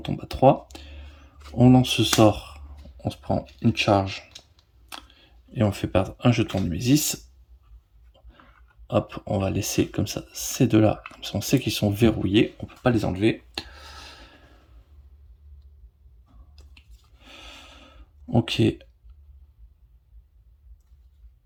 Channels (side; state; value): both; identical; correlation 1.00